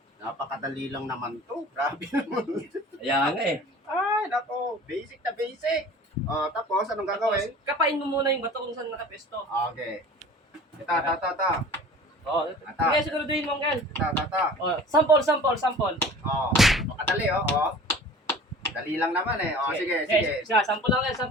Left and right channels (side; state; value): both; normal; correlation 0.43